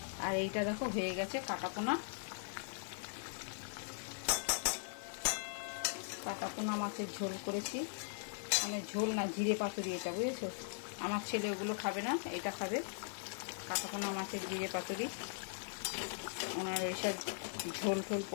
আর এইটা দেখো হয়ে গেছে কাটাপোনা। কাটাপোনা মাছের ঝোল করেছি, মানে ঝোল না, জিরে পাতুরি এটা, বুঝেছো? আমার ছেলে ওগুলো খাবে না, এটা খাবে। কাটাপোনা মাছের জিরে পাতুরি, ওনার ওইসব ঝোল ঝোল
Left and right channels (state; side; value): silent; right; 51 dB below the other